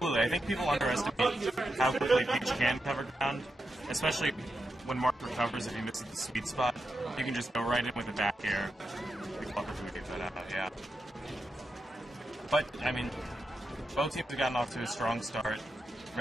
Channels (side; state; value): both; normal; correlation 0.87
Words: I think people underestimate how quickly Peach can cover ground, especially when Mark recovers. If he misses the sweet spot, you can just go right in with a back air. Yeah. But, I mean, both teams have gotten off to a strong start.